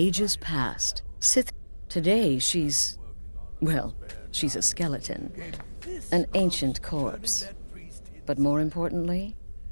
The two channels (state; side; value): inverted; both; correlation -1.00